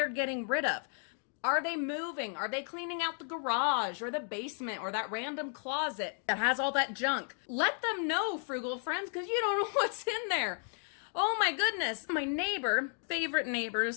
getting rid of. Are they moving? Are they cleaning out the garage or the basement or that random closet that has all that junk? Let them know, frugal friends, because you don't know what's in there. Oh my goodness. My neighbor, favorite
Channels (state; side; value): silent; right; 55 dB below the other